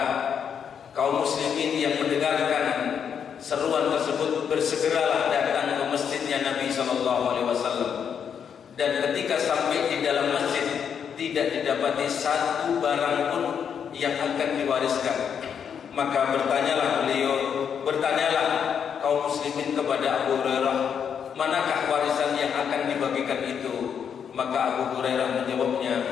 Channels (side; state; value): right; quieter; 7.6 dB